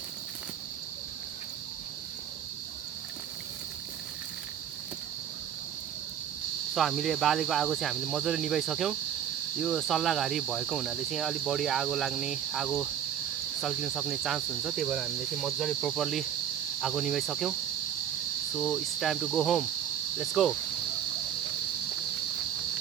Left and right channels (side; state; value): left; quieter; 9.5 dB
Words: सो हामीले बालेको आगो चाहिँ हामीले मजाले निभाइसक्यौँ। यो सल्लाहघारी भएको हुनाले चाहिँ अलिक बढी आगो लाग्ने, आगो सल्किन सक्ने चान्स हुन्छ, त्यही भएर हामीले चाहिँ मजाले प्रोपरली आगो निभाइसक्यौँ। So it's time to go home, let's go.